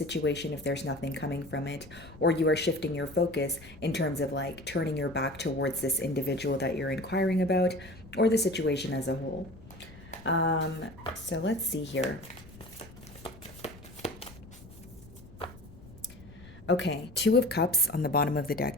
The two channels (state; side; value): noise; left; rumble, 19 dB below the sound